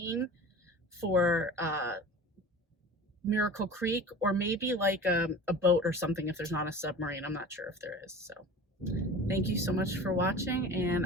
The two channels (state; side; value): normal; both; correlation 0.37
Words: for Miracle Creek, or maybe like a boat or something if there's not a submarine. I'm not sure if there is. So thank you so much for watching, and